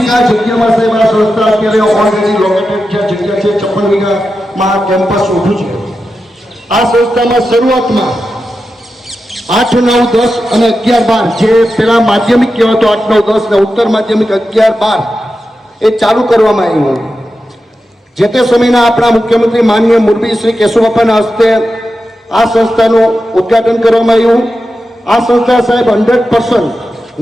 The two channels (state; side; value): normal; both; correlation 0.90